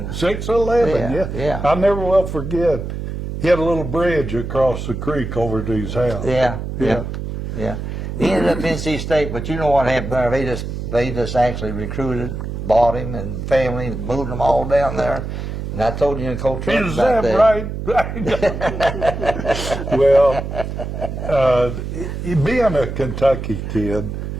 6'11", yeah. I never will forget. He had a little bridge across the creek over to his house. Yeah. He ended up in NC State, but you know what happened there? They just actually recruited, bought him and family, and moved them all down there. And I told you and Coach Rupp about that. Is that right? Well, being a Kentucky kid,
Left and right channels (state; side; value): noise; right; hum, 6 dB below the sound